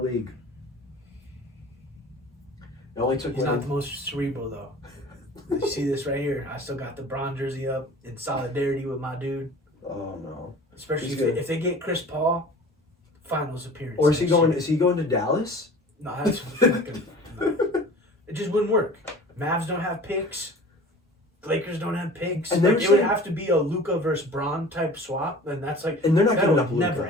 It only took He's not the most cerebral though. You see this right here? I still got the Bron jersey up in solidarity with my dude. Oh no. Especially if they get Chris Paul, finals appearance. Or is he going to Dallas? No, that's fucking. No. It just wouldn't work. Mavs don't have picks. Lakers don't have picks. And it would have to be a Luka versus Bron type swap, and that's like. And they're not giving up Luka. Luka. Never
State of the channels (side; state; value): both; normal; correlation 0.42